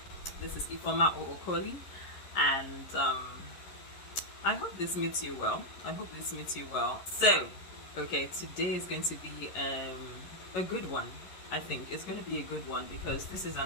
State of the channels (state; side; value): late; right; 11 ms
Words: This is Ifoma Ookoli, and I hope this meets you well. So, okay, today is going to be a good one. I think it's going to be a good one because this is